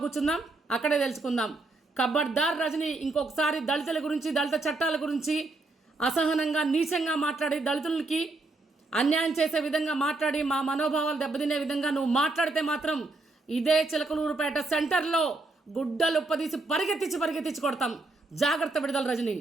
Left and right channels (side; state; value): left; quieter; 3.2 dB